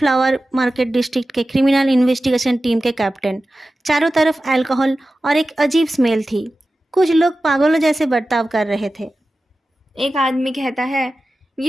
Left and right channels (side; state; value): both; normal; correlation 0.94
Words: मार्केट डिस्ट्रिक्ट के क्रिमिनल इन्वेस्टिगेशन टीम के कैप्टन। चारों तरफ अल्कोहल और एक अजीब स्मेल थी। कुछ लोग पागलों जैसे बर्ताव कर रहे थे। एक आदमी कहता है,